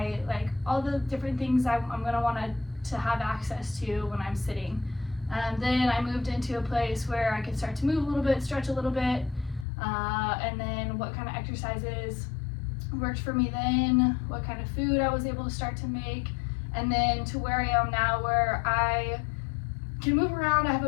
like all the different things I'm going to want to have access to when I'm sitting. And then I moved into a place where I could start to move a little bit, stretch a little bit, and then what kind of exercises worked for me then, what kind of food I was able to start to make, and then to where I am now where I can move around. I have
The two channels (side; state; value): right; drops out; at 9.7 s